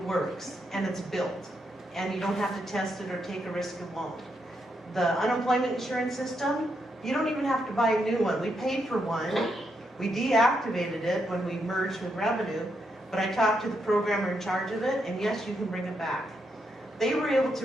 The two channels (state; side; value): normal; both; correlation 0.80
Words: works, and it's built, and you don't have to test it or take a risk of won't. The unemployment insurance system, you don't even have to buy a new one. We paid for one, we deactivated it when we merged with Revenue, but I talked to the programmer in charge of it, and yes, you can bring it back. They were able to